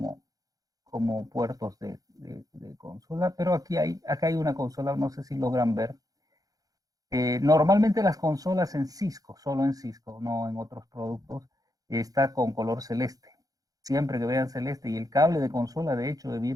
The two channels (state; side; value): late; left; 0.17 ms